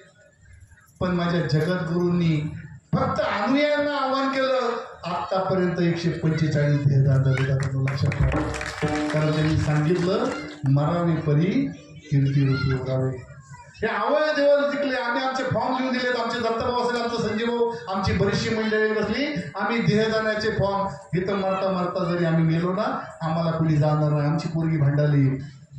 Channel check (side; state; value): both; identical; correlation 1.00